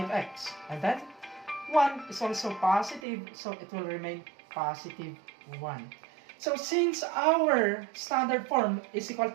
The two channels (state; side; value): drops out; left; at 3.0 s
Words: And then 1 is also positive, so it will remain positive 1. So since our standard form is equal